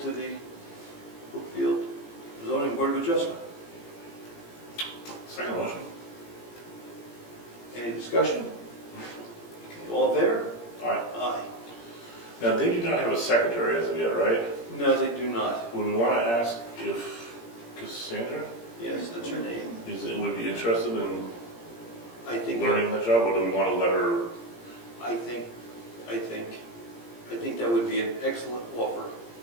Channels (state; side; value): late; right; 17 ms